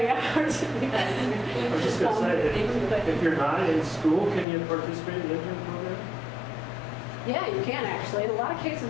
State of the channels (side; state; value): right; drops out; at 4.5 s